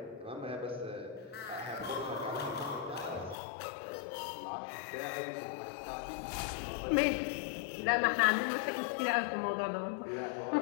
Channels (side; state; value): right; drops out; at 3.4 s